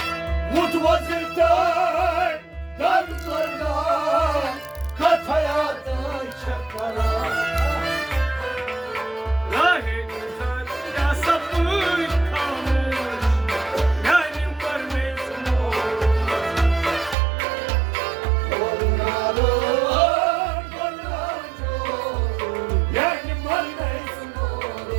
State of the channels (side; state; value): left; drops out; at 17.2 s